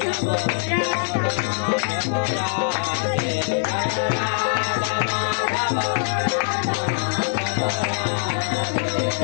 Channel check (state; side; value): silent; right; 64 dB below the other